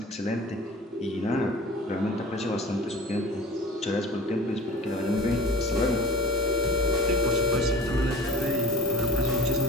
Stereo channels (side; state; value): both; normal; correlation 0.40